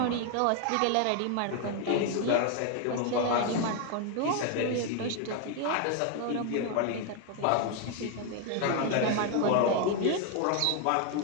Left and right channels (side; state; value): both; different; correlation 0.01